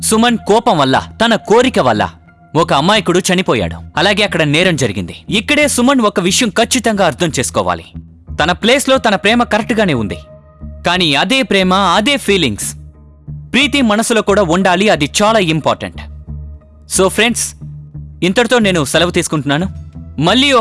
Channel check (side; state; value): both; identical; correlation 1.00